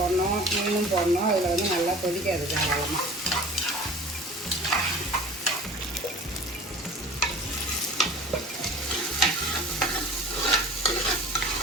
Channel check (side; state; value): both; normal; correlation 0.42